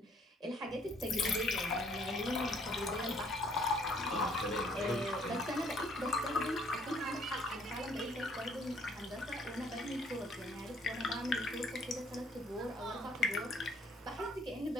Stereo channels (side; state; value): both; normal; correlation 0.63